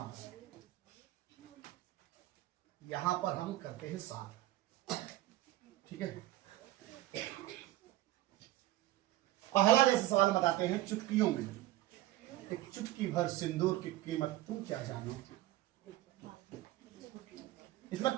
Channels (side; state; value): left; quieter; 15.9 dB